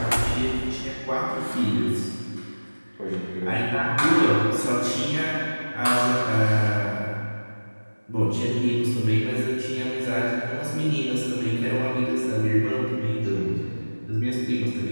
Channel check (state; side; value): inverted; both; correlation -1.00